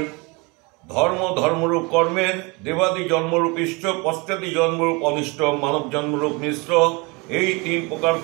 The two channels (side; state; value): left; quieter; 27.7 dB